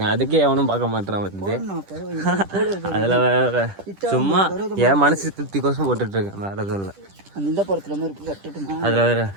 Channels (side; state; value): left; late; 10 ms